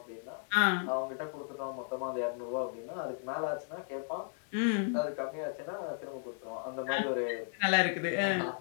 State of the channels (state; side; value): silent; right; digital silence